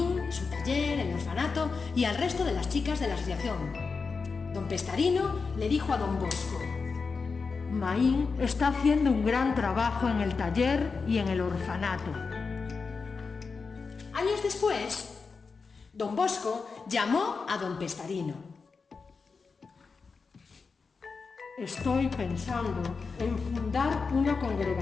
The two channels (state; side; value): quieter; right; 4.8 dB